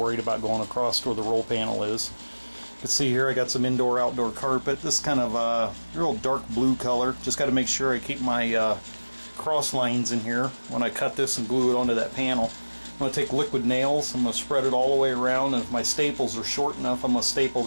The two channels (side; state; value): both; inverted; correlation -1.00